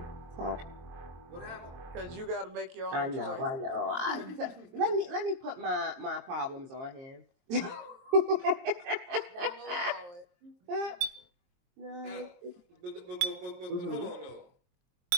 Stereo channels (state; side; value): late; left; 23 ms